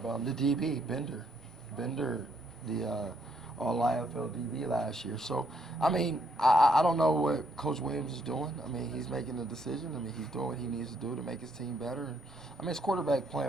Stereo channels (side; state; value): both; normal; correlation 0.72